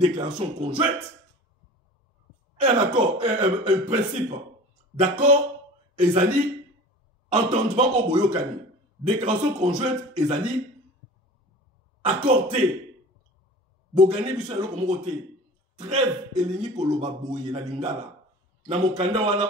conjointe. Un accord, un principe d'accord, ezali, entendement au boyokani. Déclaration conjointe, ezali, accordé. Bogani biso yalo komokote. Trêve elingi koloba boye na lingala. Na mokanda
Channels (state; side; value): normal; both; correlation 0.40